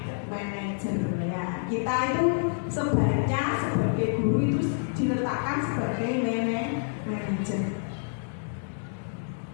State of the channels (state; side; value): silent; right; 59 dB below the other